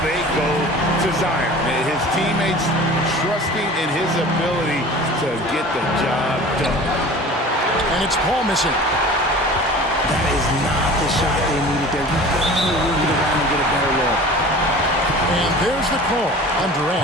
go to Zion. His teammates trusting in his ability to get the job done. And it's Paul missing. That is not the shot they needed there. You got to move it around and get a better look. And there's the call on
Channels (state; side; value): normal; both; correlation 0.41